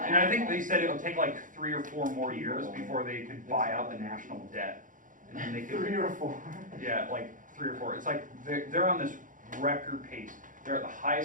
I think they said it'll take like 3 or 4 more years before they could buy out the national debt. And then they could 3 or 4. Yeah, like 3 or 4. It's like they're on this record pace. They're at the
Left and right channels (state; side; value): late; left; 0.38 ms